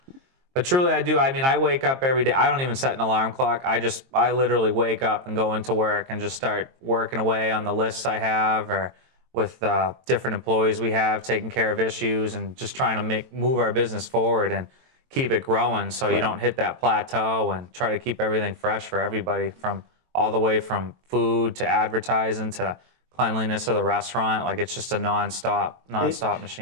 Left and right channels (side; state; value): left; late; 22 ms